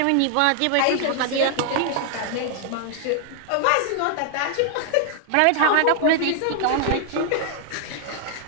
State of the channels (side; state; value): both; different; correlation -0.01